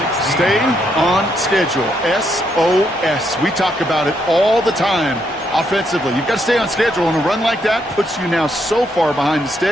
Stay on schedule. SOS. We talk about it all the time offensively. You've got to stay on schedule, and a run like that puts you now so far behind the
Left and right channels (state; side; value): normal; both; correlation 0.76